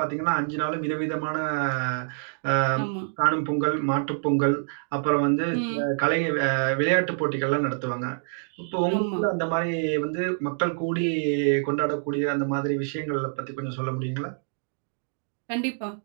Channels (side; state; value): left; silent; digital silence